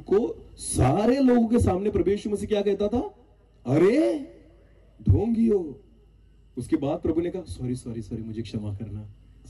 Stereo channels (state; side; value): identical; both; correlation 1.00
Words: सारे लोगों के सामने प्रभु यीशु मसीह क्या कहता था? अरे ढोंगियो। उसके बाद प्रभु ने कहा, सॉरी, मुझे क्षमा करना।